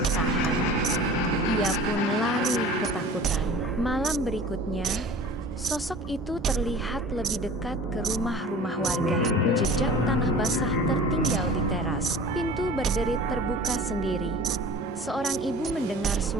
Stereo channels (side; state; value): both; normal; correlation 0.42